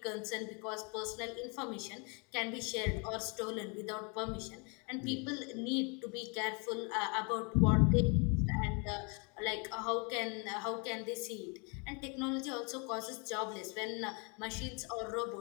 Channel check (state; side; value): quieter; right; 33.6 dB